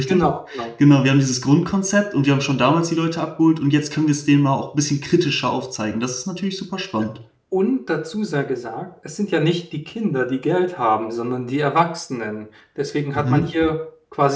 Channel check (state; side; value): identical; both; correlation 1.00